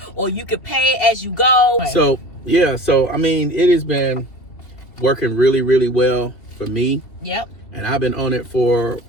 or you can pay as you go. So I mean, it has been working really, really well for me. Yep. And I've been on it for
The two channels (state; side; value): late; right; 2.7 ms